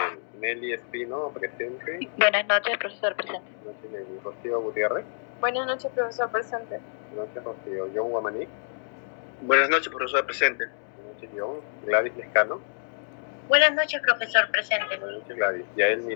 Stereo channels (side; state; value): right; silent; digital silence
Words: Nelly Espino, presente. Buenas noches, profesor presente. Buenas noches, Nelly. Rocío Gutiérrez. Buenas noches, profesor presente. Buenas noches, Rocío. John Guamaní. Buenas noches, profesor. Presente. Buenas noches, John. Gladys Lescano. Buenas noches, profesor presente. Buenas noches, Gladys. Yael